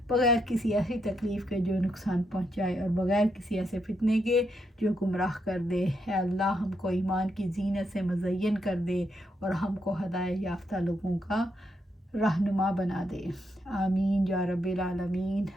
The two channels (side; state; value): both; normal; correlation 0.79